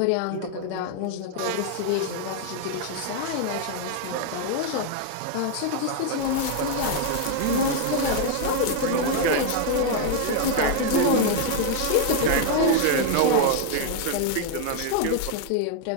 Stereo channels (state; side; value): different; both; correlation 0.00